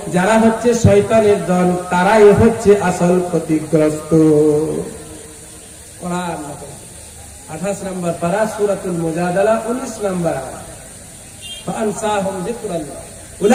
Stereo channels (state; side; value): identical; both; correlation 1.00